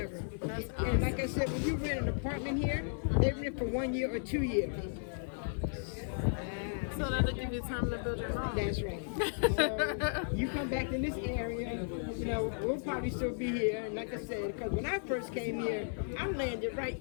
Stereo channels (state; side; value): silent; right; 55 dB below the other